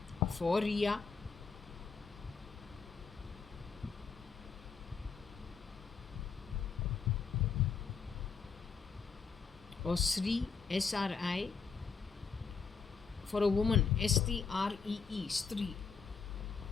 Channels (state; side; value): quieter; right; 5.6 dB